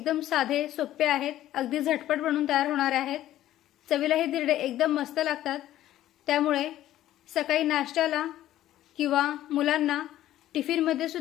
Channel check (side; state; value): right; quieter; 13.4 dB